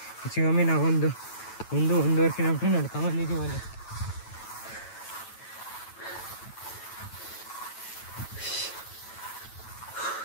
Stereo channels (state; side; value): late; right; 9.1 ms